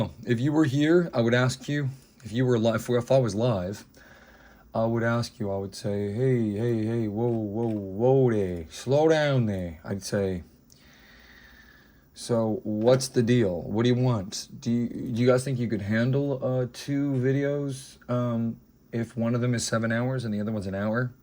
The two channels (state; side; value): identical; both; correlation 1.00